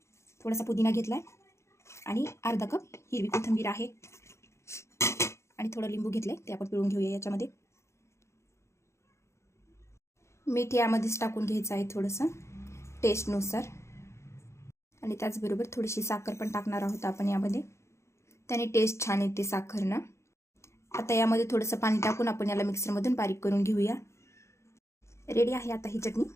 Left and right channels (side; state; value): right; late; 0.13 ms